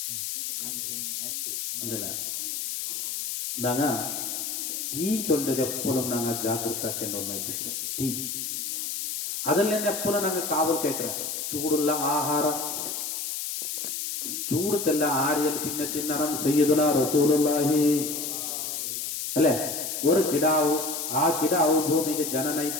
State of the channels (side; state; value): left; noise; hiss, 4 dB below the sound